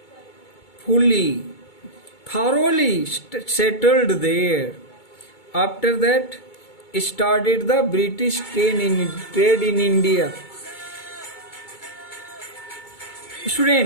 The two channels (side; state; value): right; late; 2.2 ms